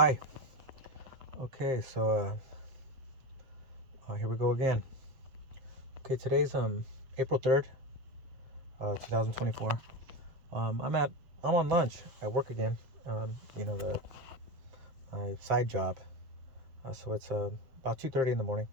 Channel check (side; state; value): left; late; 7.5 ms